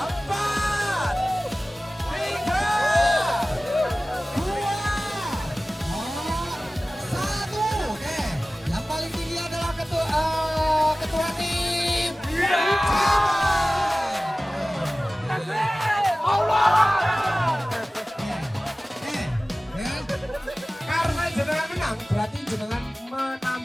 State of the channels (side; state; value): both; normal; correlation 0.97